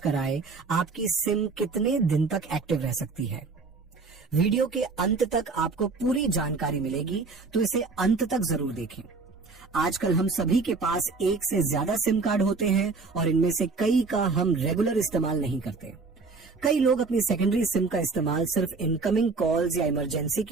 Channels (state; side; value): quieter; left; 4.3 dB